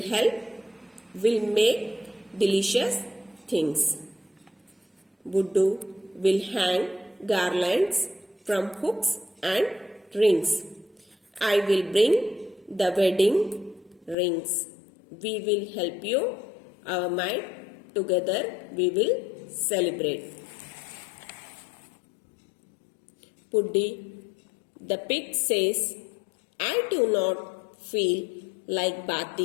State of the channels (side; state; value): right; drops out; at 14.2 s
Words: help, will make delicious things. Buddu will hang garlands from hooks and rings. I will bring the wedding rings. We will help you. Our might together we will celebrate. Puddi the pig says, I do not feel like